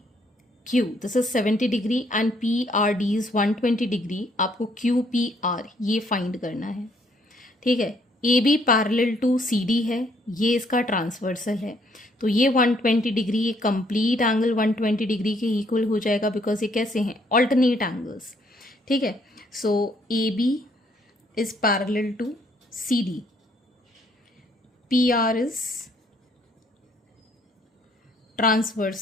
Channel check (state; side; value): normal; both; correlation 0.67